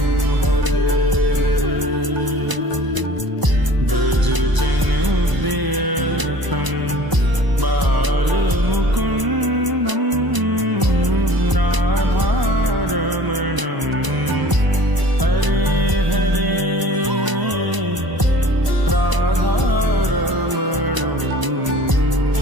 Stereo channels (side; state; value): left; late; 1.0 ms